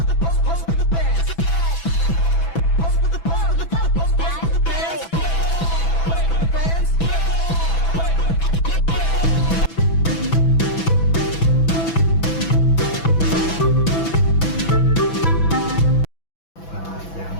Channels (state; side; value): late; right; 6.0 ms